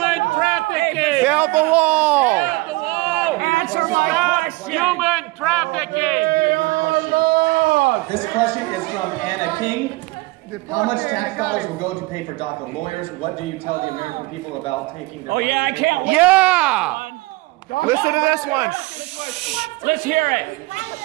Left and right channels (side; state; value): left; quieter; 22.5 dB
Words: trafficking. Build the wall. Build the wall. Answer my question. Human trafficking. This question is from Anna King. How much tax dollars will go to pay for DACA lawyers? What do you tell the American people about taking their... Oh yeah, I can't wait. Yeah! Listen to this one. Let's hear it.